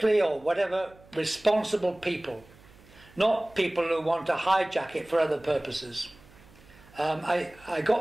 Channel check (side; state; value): right; noise; hum, 25 dB below the sound